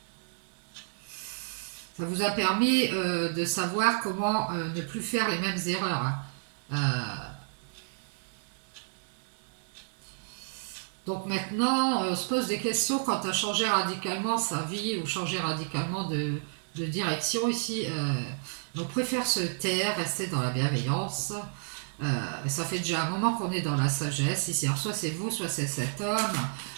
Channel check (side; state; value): left; silent; digital silence